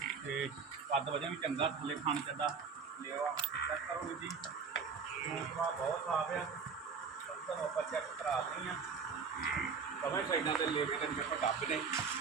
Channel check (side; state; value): left; quieter; 5.7 dB